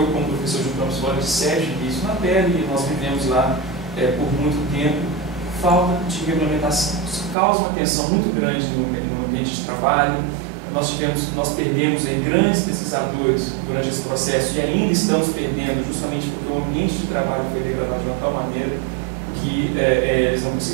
como professor de Campos Flores, tive isso na pele, e nós vivemos lá por muito tempo, falta de regulamentação. Isso causa uma tensão muito grande no ambiente de trabalho. Nós perdemos aí grandes pesquisadores durante esse processo e ainda estamos perdendo justamente porque o ambiente de trabalho foi degradado de uma tal maneira que eles não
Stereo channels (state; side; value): drops out; left; at 7.4 s